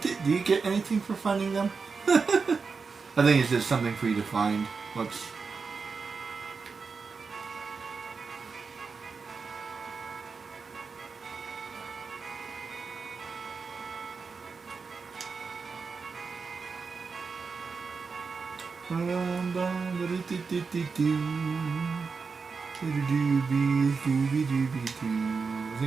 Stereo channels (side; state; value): left; quieter; 4.9 dB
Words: do you get anything for finding them? I think it's just something for you to find. Whoops. I